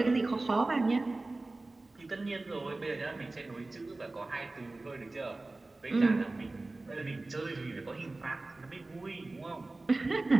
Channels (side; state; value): left; quieter; 3.1 dB